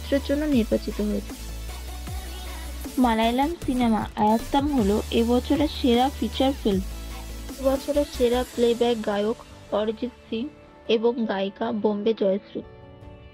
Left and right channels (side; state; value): both; identical; correlation 1.00